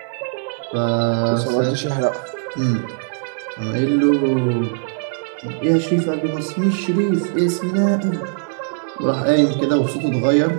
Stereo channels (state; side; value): silent; left; 58 dB below the other